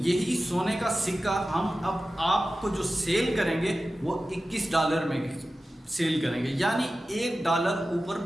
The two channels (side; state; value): both; normal; correlation 0.94